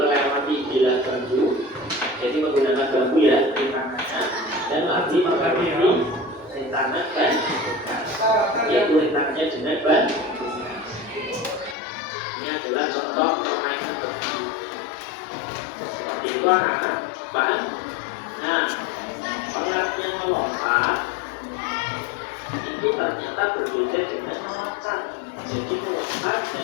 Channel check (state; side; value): drops out; right; at 11.8 s